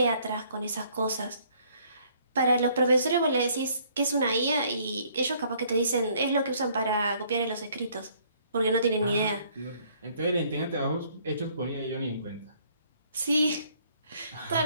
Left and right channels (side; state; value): both; inverted; correlation -0.63